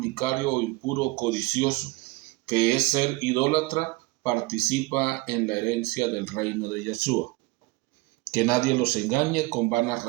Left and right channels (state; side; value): quieter; left; 22.7 dB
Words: o impuro o codicioso, que es ser idólatra, participa en la herencia del reino de Yeshua. Que nadie los engañe con vanas